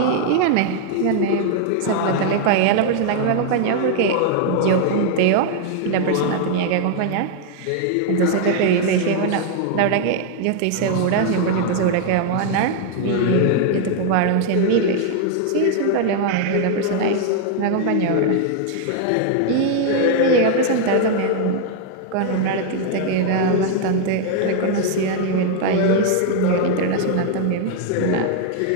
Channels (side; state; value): both; different; correlation 0.00